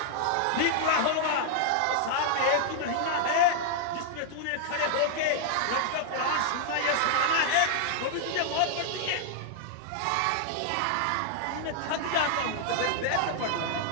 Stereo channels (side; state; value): both; different; correlation -0.01